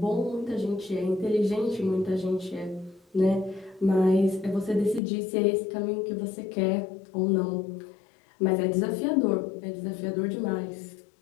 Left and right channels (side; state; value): right; drops out; at 5.0 s